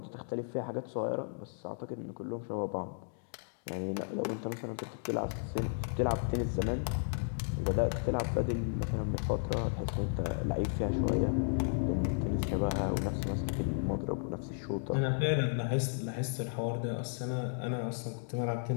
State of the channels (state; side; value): silent; right; digital silence